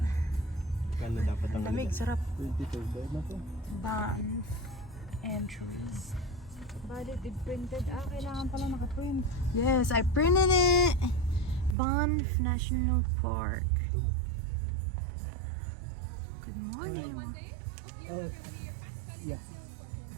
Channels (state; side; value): drops out; left; at 11.8 s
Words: Kano dapat ang Lamig, sarap. 22 bayad na to. Banff entries. Valid if printed. Kailangan pala naka-print. Yes, I printed it. Banff National Park. Good morning. Oh, yeah.